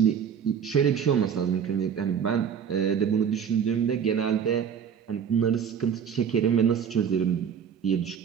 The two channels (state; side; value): quieter; left; 7.6 dB